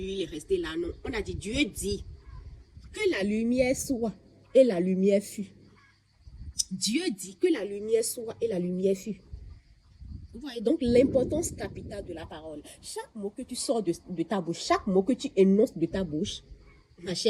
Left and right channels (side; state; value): both; identical; correlation 1.00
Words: il est resté là. Non, on a dit, Dieu dit que la lumière soit, et la lumière fut. Dieu dit que la lumière soit, et la lumière fut. Vous voyez donc l'importance capitale de la parole. Chaque mot que tu sors de ta bouche, chaque mot que tu énonces de ta bouche, ma